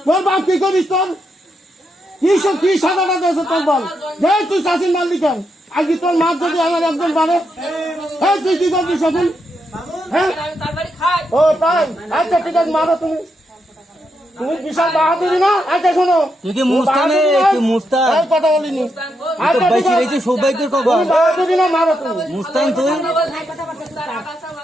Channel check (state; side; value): normal; both; correlation 0.82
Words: তোর বাপ কি করিস তোর কি সাদাটা দিয়েছে তোর বল যে তুই চাষির মাল দিতেন আজকে তোর মাছ যদি আমার একজন বাড়ে হ্যাঁ তুই কি করবি সকল হ্যাঁ ও তাই আচ্ছা ঠিক আছে মারো তুমি তুমি বিশাল বাহাদুরি না। আচ্ছা শোনো তুই কি মুস্তানে কি মুস্তান কথা বলিনি তো বাইসি রইছে সৌভাগ্যের খবর বাহাদুরি না মারো তুমি মুস্তান তুই